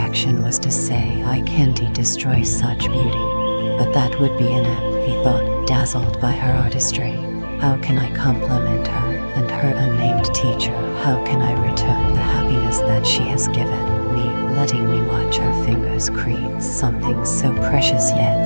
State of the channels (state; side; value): inverted; both; correlation -1.00